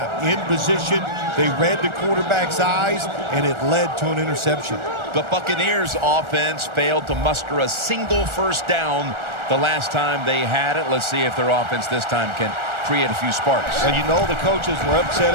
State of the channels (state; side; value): late; left; 1.4 ms